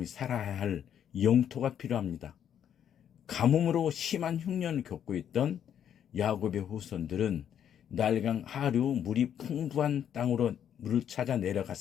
살아야 할 영토가 필요합니다. 가뭄으로 심한 흉년을 겪고 있던 야곱의 후손들은 날강 하류 물이 풍부한 땅으로 물을 찾아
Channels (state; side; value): quieter; right; 9.2 dB